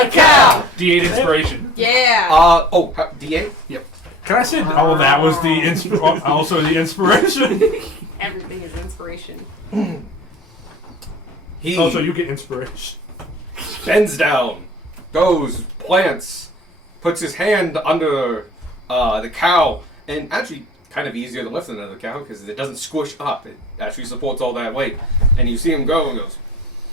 cow. D8 inspiration. Yeah. D8? Can I say? Oh, that was the also the inspiration. Everything is inspiration. He Oh, so you get inspiration. bends down, goes, plants, puts his hand under the cow, and actually kind of easier to lift than another cow because it doesn't squish up. It actually supports all that weight. And you see him go and goes,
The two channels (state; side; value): normal; both; correlation 0.44